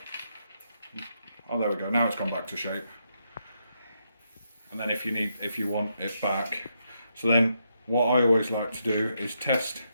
Oh, there we go. Now it's gone back to shape. And then if you want it back, so then what I always like to do is test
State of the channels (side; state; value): both; inverted; correlation -0.80